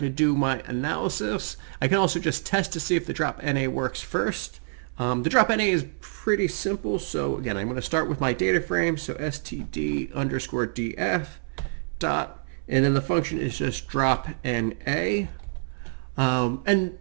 do my analysis, I can also just test to see if the drop NA works first. The drop NA is pretty simple. So again, I'm going to start with my data frame. So std underscore df dot, and then the function is just drop NA. And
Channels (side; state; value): left; silent; 60 dB below the other